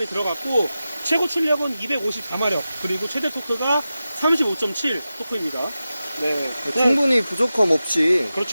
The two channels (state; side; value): inverted; both; correlation -0.94